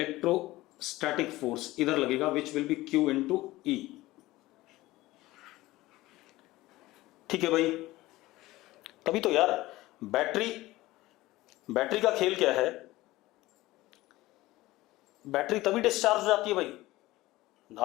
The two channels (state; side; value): quieter; right; 18.2 dB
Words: फोर्स इधर लगेगा, which will be q into e. ठीक है भाई, तभी तो यार बैटरी का खेल क्या है, बैटरी तभी डिस्चार्ज हो जाती है भाई।